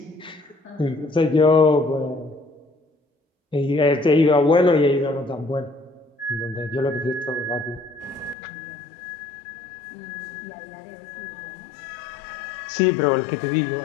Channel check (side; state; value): right; drops out; at 8.3 s